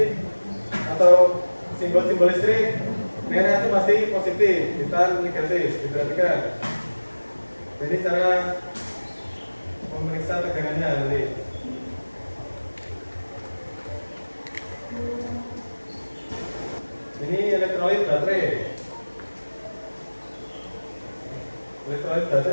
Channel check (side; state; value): both; inverted; correlation -1.00